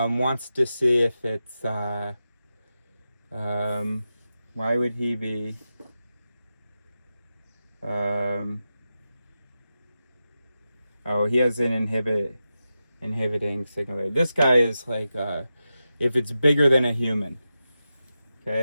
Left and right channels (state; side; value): inverted; both; correlation -0.91